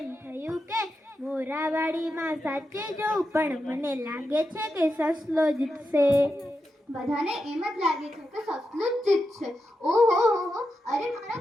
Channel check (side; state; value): both; normal; correlation 0.88